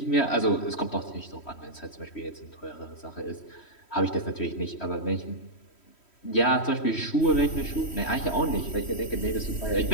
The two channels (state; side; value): late; right; 3.1 ms